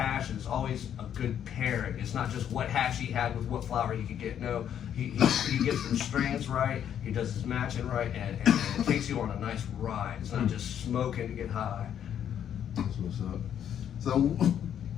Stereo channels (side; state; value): right; quieter; 9.5 dB